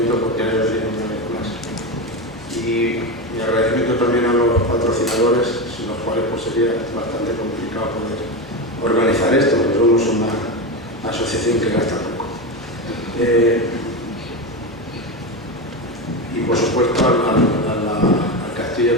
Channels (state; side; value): normal; both; correlation 0.17